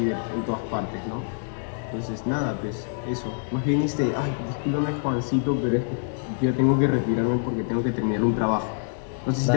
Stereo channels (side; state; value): right; silent; digital silence